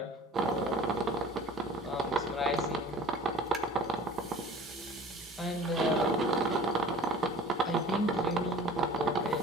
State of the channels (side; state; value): both; normal; correlation 0.45